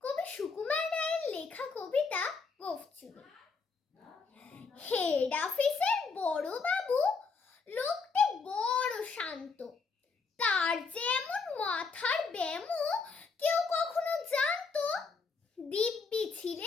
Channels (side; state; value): right; quieter; 4.7 dB